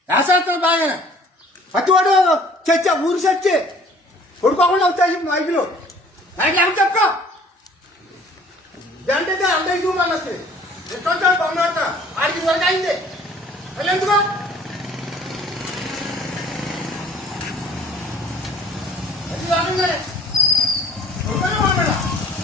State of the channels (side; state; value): both; normal; correlation 0.54